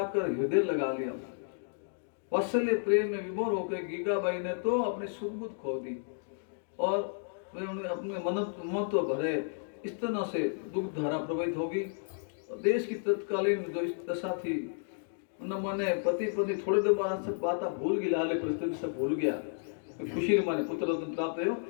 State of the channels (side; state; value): right; silent; digital silence